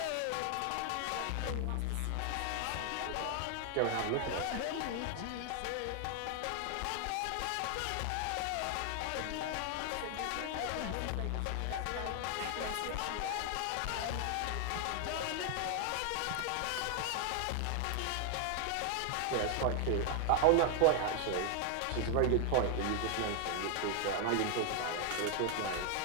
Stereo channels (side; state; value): both; different; correlation 0.00